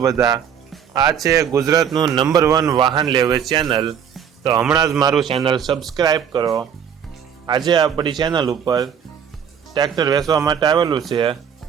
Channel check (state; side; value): quieter; left; 8.1 dB